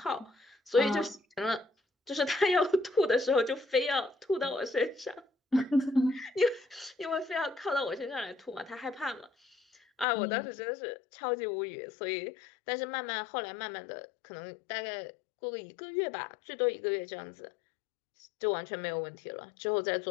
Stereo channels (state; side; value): drops out; right; at 10.1 s